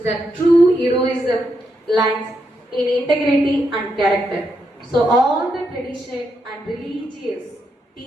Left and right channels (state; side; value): normal; both; correlation 0.82